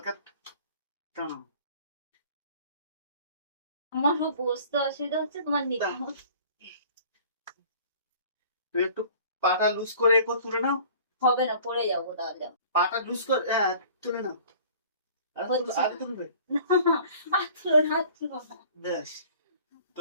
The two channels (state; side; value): inverted; both; correlation -0.49